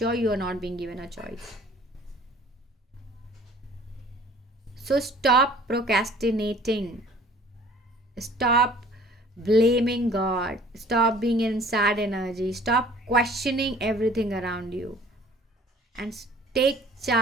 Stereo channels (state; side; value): normal; both; correlation 0.52